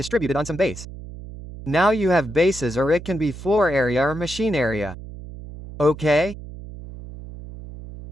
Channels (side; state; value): right; noise; hum, 13 dB below the sound